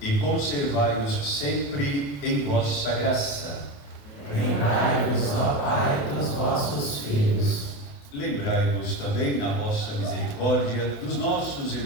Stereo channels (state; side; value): late; right; 28 ms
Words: conservai-os sempre em vossa graça. Lembrai-vos, ó Pai, dos vossos filhos. Lembrai-vos também, na vossa misericórdia, dos nossos